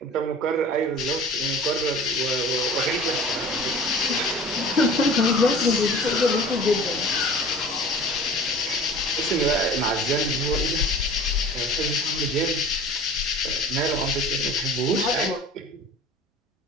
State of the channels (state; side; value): normal; both; correlation 0.42